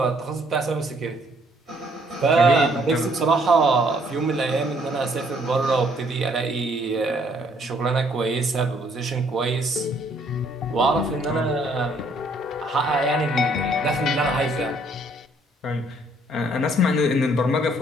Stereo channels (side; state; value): both; normal; correlation 0.65